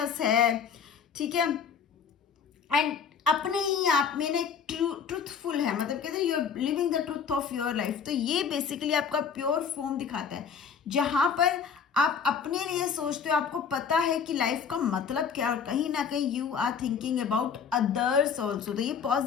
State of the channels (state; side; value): quieter; right; 6.7 dB